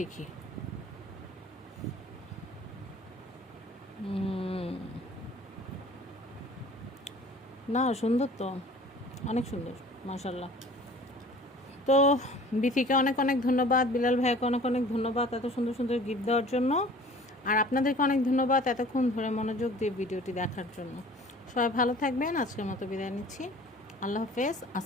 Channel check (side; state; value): both; normal; correlation 0.47